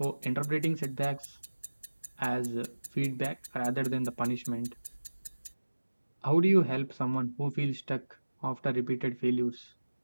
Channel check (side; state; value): both; inverted; correlation -1.00